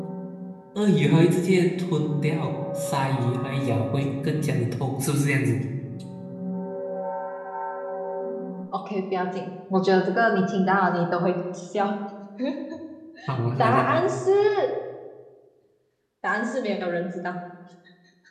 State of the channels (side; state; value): both; identical; correlation 1.00